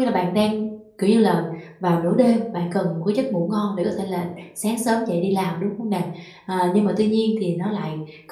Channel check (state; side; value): identical; both; correlation 1.00